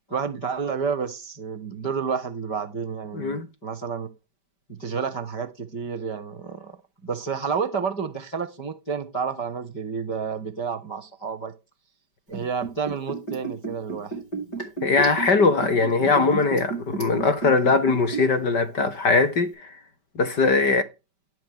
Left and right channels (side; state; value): right; late; 5.1 ms